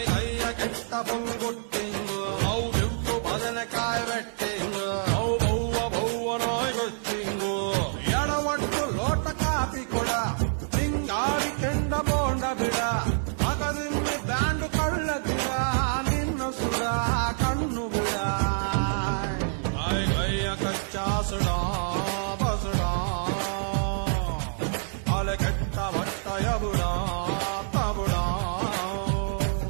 ಕೆಟ್ಟ ಪುಂಗುಟ್ಟಿಂಗು ಅವು ಬಿಟ್ಟು ಬದನೆಕಾಯಿ ಬೆಟ್ಟಿಂಗು ಅವು ಬವ್ವ ನಾಯ್ ಗೊತ್ತಿಂಗು ಎಡವಟ್ಟು ಲೋಟ ಕಾಪಿ ಕೊಡ ಹಿಂಗಾಡಿ ಕೆಂಡ ಬೋಂಡ ಬಿಡ ಮಗದಿಮ್ಮಿ ಬ್ಯಾಂಡು ಕಳ್ಳದಿರ ನಿನ್ನ ಸುಡ ಕಣ್ಣು ಬಿಡ ಕೈಯ ಕಚ್ಚಾ ಸುಡ ಬಸುಡ ಅಲೆ ಕೆಟ್ಟ ಬಟ್ಟಯ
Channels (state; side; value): silent; left; digital silence